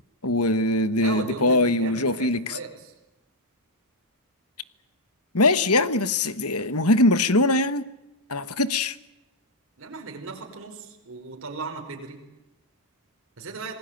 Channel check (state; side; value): normal; both; correlation -0.02